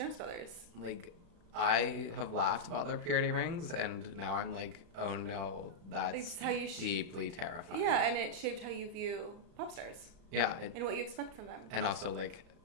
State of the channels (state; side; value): late; left; 35 ms